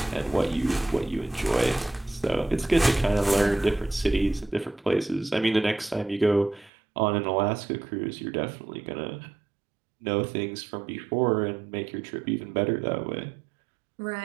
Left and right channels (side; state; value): left; drops out; at 6.7 s